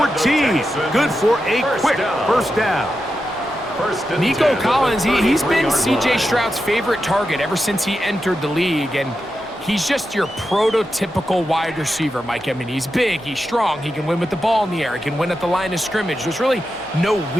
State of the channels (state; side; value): normal; both; correlation 0.89